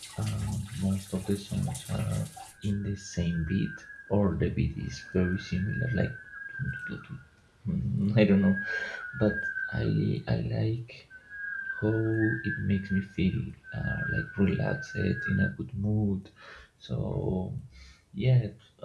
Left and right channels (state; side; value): identical; both; correlation 1.00